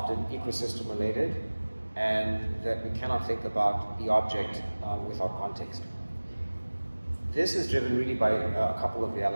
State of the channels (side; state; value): both; inverted; correlation -1.00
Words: ecosystem related, and that we cannot think about the object without context. This is driven really by a couple of